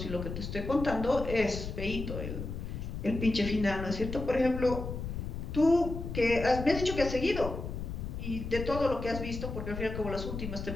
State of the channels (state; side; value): noise; left; rumble, 6 dB below the sound